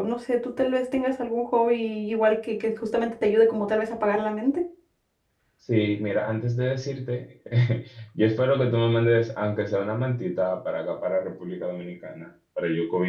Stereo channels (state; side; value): identical; both; correlation 1.00